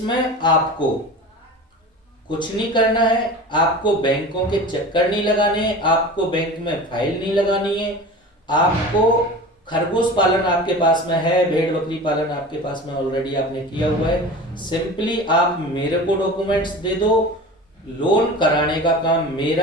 आपको कुछ नहीं करना है, आपको बैंकों के चक्कर नहीं लगाने हैं, आपको बैंक में फाइल नहीं लगानी है। आपको खरगोश पालन आपके पास में है, भेड़ बकरी पालन आपके पास में ऑलरेडी आपने किया हुआ है, सिंपली आप मेरे को डॉक्यूमेंट्स दे दो। लोन कराने का काम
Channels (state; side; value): normal; both; correlation 0.35